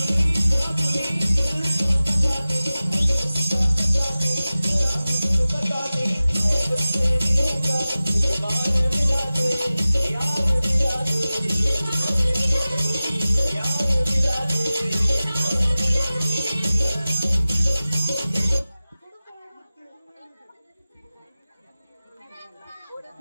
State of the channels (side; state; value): both; inverted; correlation -0.96